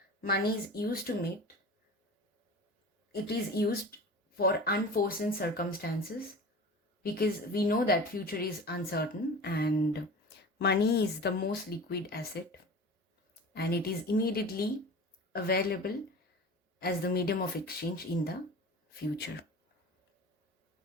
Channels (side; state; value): both; normal; correlation 0.36